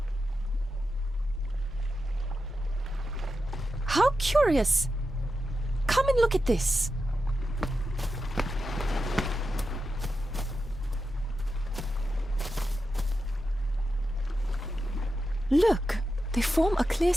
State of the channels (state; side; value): normal; both; correlation 0.89